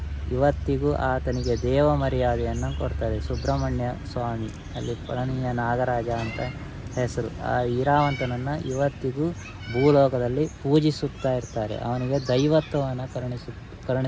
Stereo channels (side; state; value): both; identical; correlation 1.00